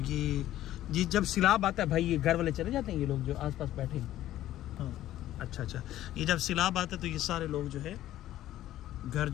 ये जब सैलाब आता है भाई, ये घर वाले चले जाते हैं, ये लोग जो आसपास बैठे हैं। हाँ अच्छा, ये जब सैलाब आता है तो ये सारे लोग जो है घर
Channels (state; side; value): quieter; right; 13.6 dB